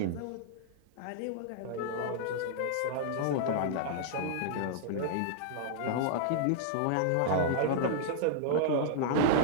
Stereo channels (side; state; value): both; different; correlation -0.01